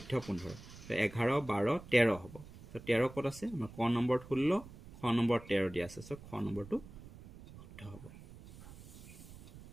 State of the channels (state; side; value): noise; right; rumble, 17 dB below the sound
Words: 15 11 12 13 হ'ব তো 13 ক'ত আছে আমাৰ ক নম্বৰত 16 খ নম্বৰ 13 দিয়া আছে সো খ নম্বৰটো শুদ্ধ হ'ব